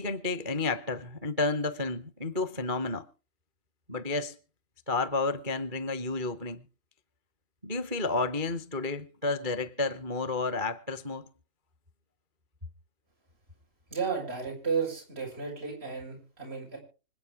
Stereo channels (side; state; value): left; late; 2.4 ms